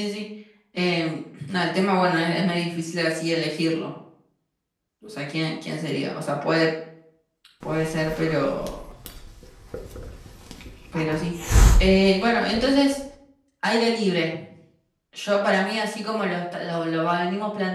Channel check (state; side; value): identical; both; correlation 1.00